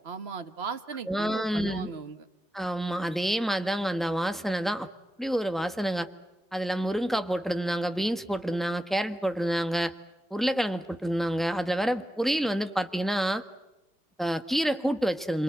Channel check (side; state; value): both; normal; correlation 0.91